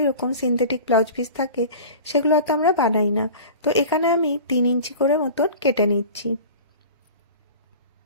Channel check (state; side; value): inverted; both; correlation -0.37